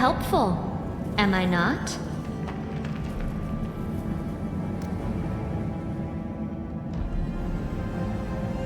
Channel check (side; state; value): both; identical; correlation 1.00